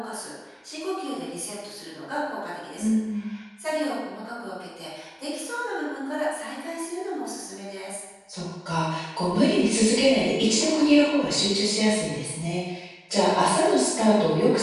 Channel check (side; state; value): both; identical; correlation 1.00